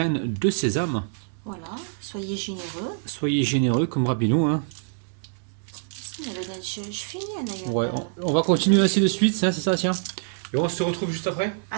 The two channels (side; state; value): left; silent; digital silence